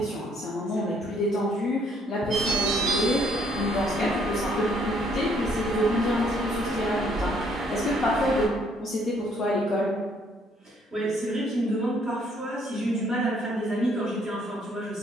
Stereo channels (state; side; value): normal; both; correlation 0.66